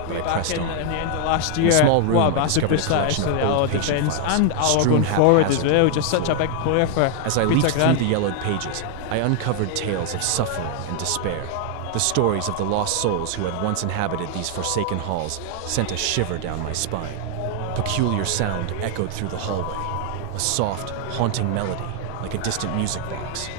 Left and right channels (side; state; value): both; different; correlation 0.00